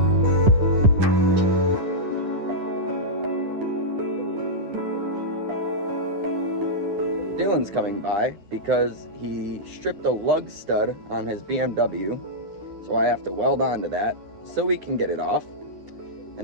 Dylan's coming by because he stripped a lug stud on his BMW, so I have to weld onto that so we can get it off.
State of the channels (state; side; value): late; left; 10 ms